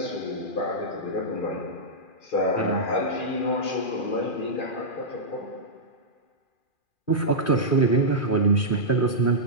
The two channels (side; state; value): right; late; 2.4 ms